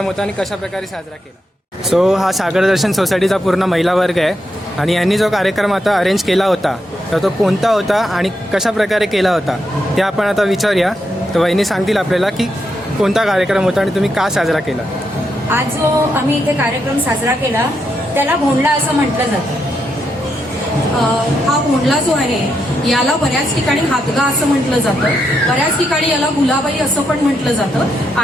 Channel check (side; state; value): both; normal; correlation 0.82